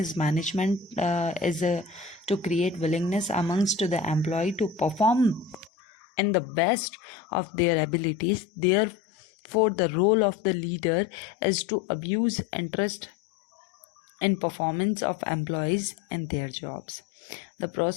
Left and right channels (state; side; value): drops out; right; at 5.7 s